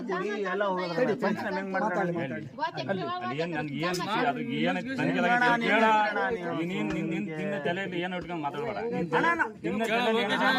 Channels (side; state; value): both; identical; correlation 1.00